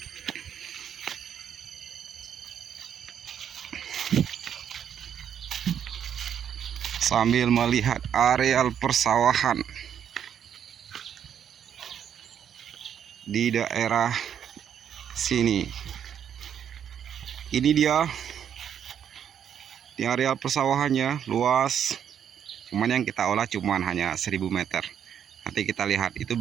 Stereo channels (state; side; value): quieter; left; 8.8 dB